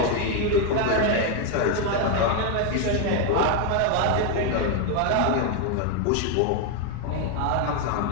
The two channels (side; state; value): both; different; correlation 0.01